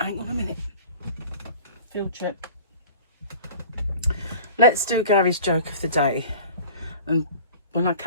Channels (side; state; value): both; inverted; correlation -0.42